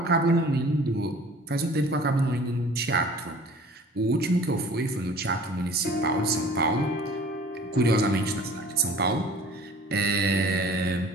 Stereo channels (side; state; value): both; normal; correlation 0.48